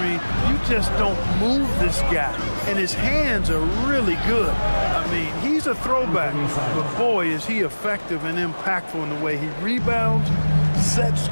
You just don't move this guy. And his hands are really good. I mean, he's a throwback, but boy, is he effective and impactful in the way he rebounds, sets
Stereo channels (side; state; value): both; inverted; correlation -1.00